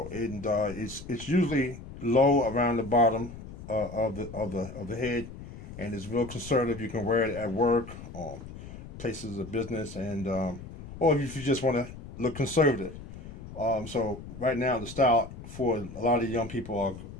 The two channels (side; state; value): left; noise; rumble, 13 dB below the sound